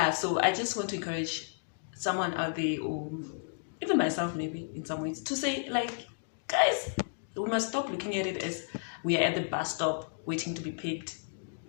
so I just want to encourage someone out there, or even myself maybe in some ways, to say like, guys, we must stop looking at it as we are at the bus stop waiting to be picked.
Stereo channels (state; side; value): silent; right; digital silence